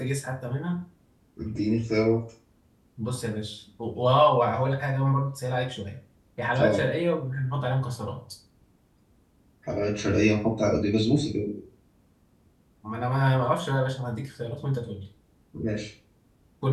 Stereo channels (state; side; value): identical; both; correlation 1.00